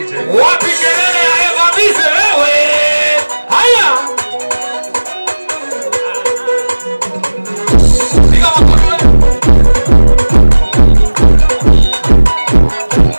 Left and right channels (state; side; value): inverted; both; correlation -1.00